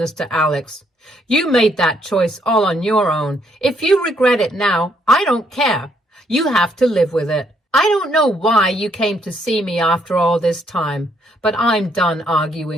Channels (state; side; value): normal; both; correlation 0.71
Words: to Alex. You made that choice all on your own. If you regret it now, I don't care. You have to live with it. I don't know why you came to see me after all this time, but I'm done